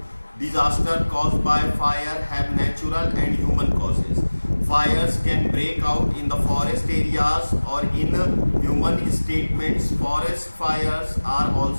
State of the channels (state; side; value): inverted; both; correlation -1.00